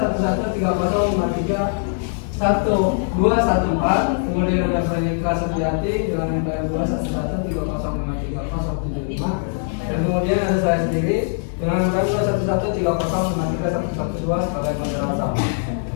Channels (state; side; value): silent; right; digital silence